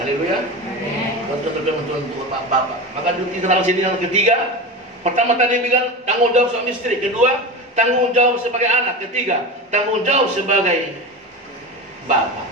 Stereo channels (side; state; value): both; normal; correlation 0.26